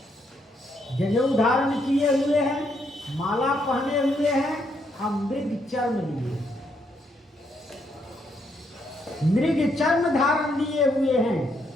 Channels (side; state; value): both; normal; correlation 0.75